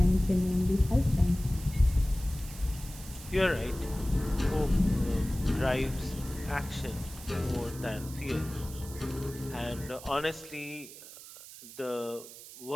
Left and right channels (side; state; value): right; noise; hiss, 16 dB below the sound